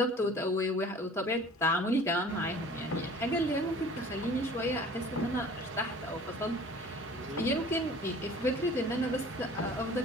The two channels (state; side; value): normal; both; correlation 0.47